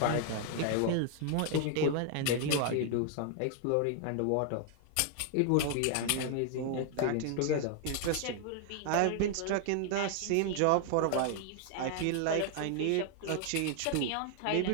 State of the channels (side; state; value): both; different; correlation 0.00